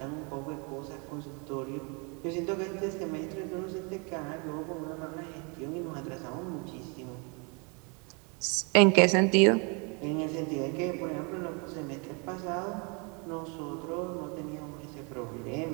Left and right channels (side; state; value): left; quieter; 34.0 dB